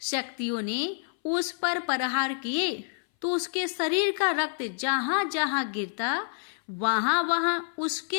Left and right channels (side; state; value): right; silent; 58 dB below the other